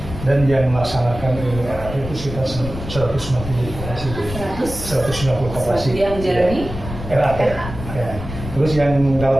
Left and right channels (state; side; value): noise; left; rumble, 9 dB below the sound